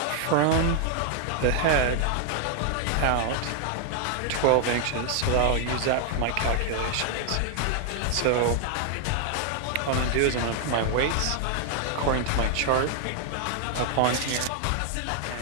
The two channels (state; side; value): different; both; correlation 0.00